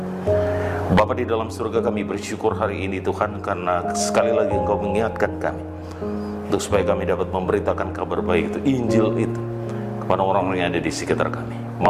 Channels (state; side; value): identical; both; correlation 1.00